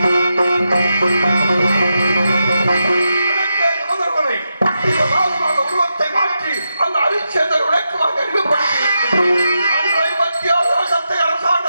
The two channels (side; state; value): both; inverted; correlation -0.87